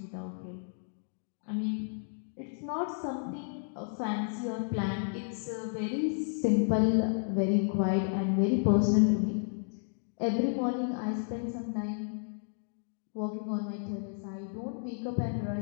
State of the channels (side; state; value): right; silent; digital silence